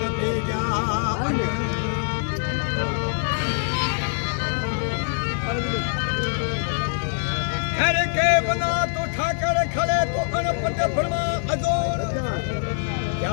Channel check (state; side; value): silent; right; digital silence